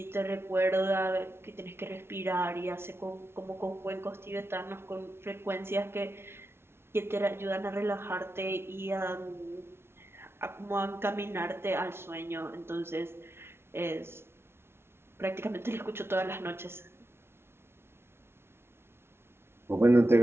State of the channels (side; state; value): left; late; 0.12 ms